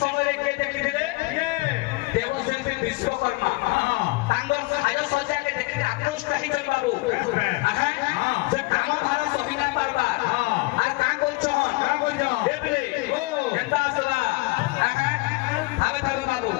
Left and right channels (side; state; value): right; quieter; 23.8 dB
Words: समय के देखिले देवशिल्पी विश्वकर्मा तांगर साज सज्जा के देखि आकृष्ट ही चल बाबू आहा जे काम भार सहिना परबार आ का कोछन देबले केंदा सदा आहा आबे थाबे बाबू